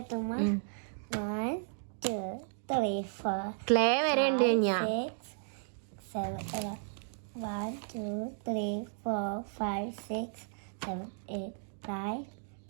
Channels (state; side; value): silent; left; digital silence